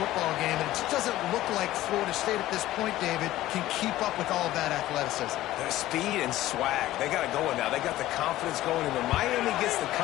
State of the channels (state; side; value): quieter; right; 15.3 dB